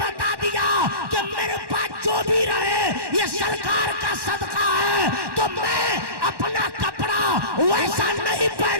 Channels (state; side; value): late; left; 1.1 ms